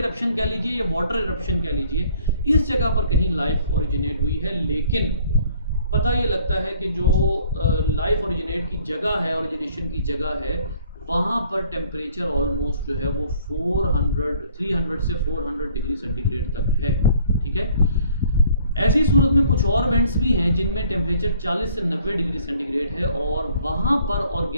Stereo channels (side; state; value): both; inverted; correlation -0.58